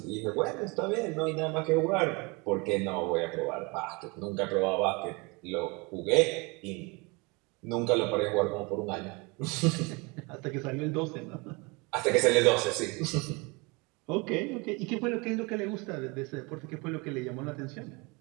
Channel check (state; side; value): quieter; left; 28.0 dB